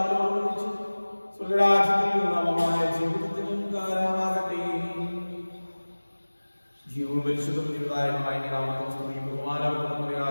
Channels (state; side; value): inverted; both; correlation -1.00